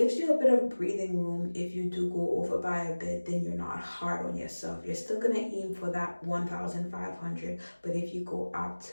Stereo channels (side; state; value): both; inverted; correlation -1.00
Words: you a bit of breathing room. If you do go over by a bit, then you're not hard on yourself. You're still going to aim for that 1,500, but if you go up